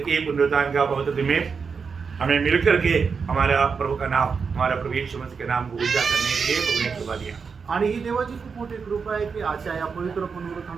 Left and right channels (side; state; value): left; quieter; 5.6 dB